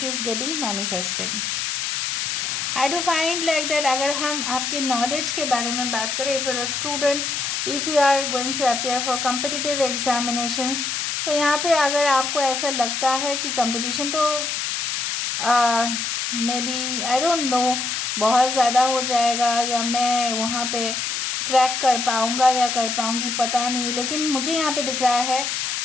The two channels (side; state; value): left; noise; hiss, 1 dB below the sound